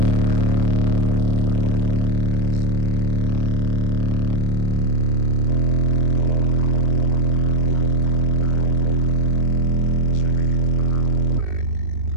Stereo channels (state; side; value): late; left; 2.4 ms